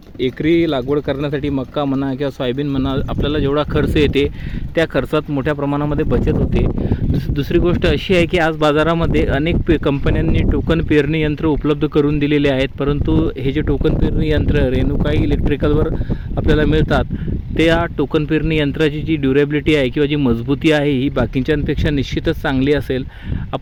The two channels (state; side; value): identical; both; correlation 1.00